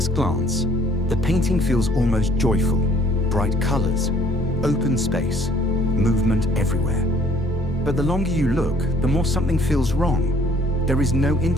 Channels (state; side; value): normal; both; correlation 0.59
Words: glance, the painting feels almost joyful. Bright colors, open space, movement everywhere. But the longer you look, the more something feels wrong. There is no